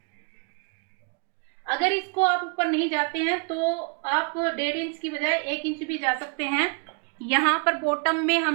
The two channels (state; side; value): quieter; left; 35.6 dB